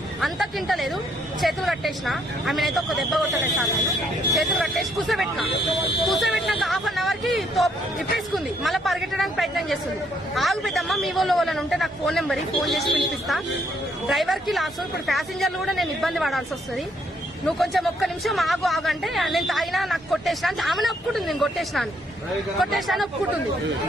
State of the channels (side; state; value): both; normal; correlation 0.70